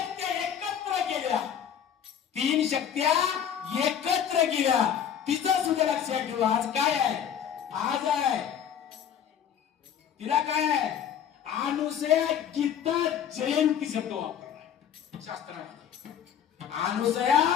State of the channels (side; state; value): right; quieter; 8.9 dB